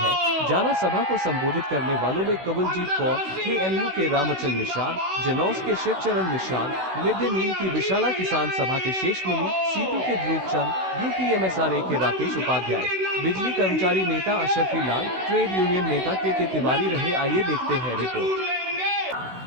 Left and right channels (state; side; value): late; left; 16 ms